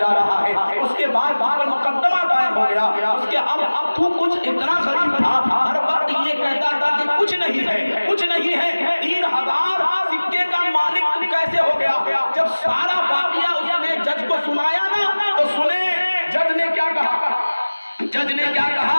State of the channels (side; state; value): both; inverted; correlation -1.00